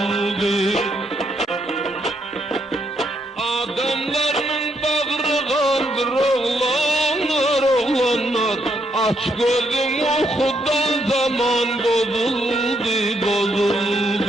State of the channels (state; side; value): normal; both; correlation 0.75